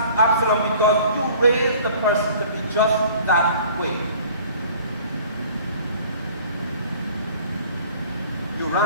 because you raised the person to be just that way. You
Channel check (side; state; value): both; inverted; correlation -0.50